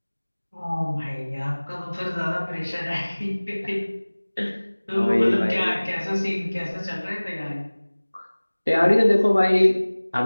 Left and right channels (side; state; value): both; inverted; correlation -1.00